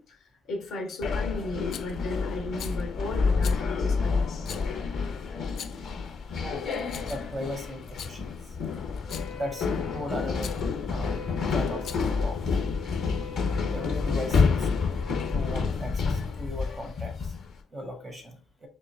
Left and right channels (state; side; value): quieter; right; 4.2 dB